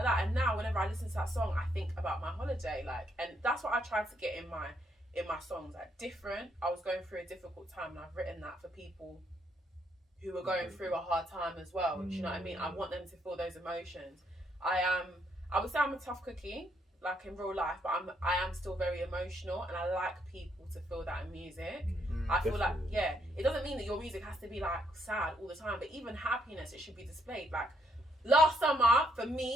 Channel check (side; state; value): both; normal; correlation 0.74